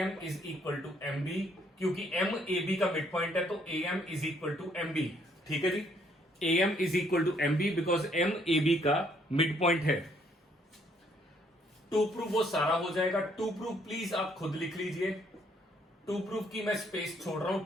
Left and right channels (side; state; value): both; normal; correlation 0.67